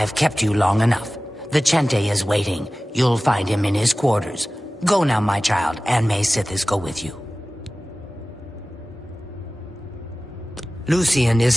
kept you long enough. Vicente is waiting. You'll find him in his quarters. Go now, my child, and may Sithis go with you. Lucien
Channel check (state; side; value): normal; both; correlation 0.97